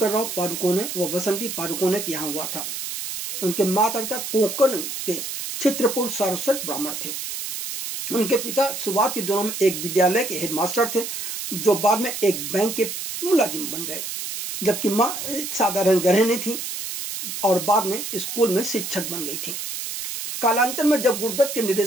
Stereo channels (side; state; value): right; noise; hiss, 6 dB below the sound